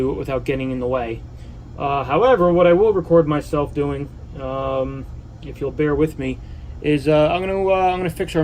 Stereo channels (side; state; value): both; identical; correlation 1.00